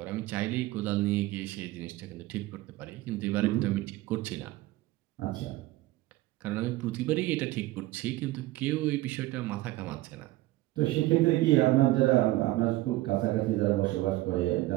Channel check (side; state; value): left; quieter; 17.7 dB